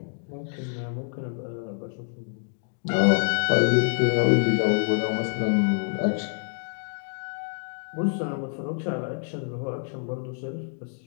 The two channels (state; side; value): silent; right; digital silence